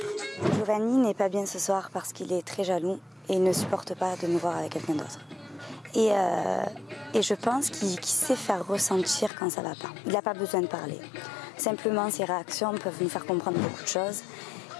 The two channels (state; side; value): drops out; right; at 9.3 s